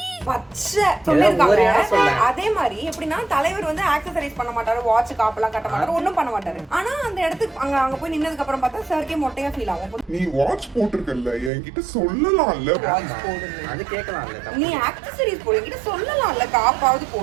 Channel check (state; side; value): drops out; left; at 11.5 s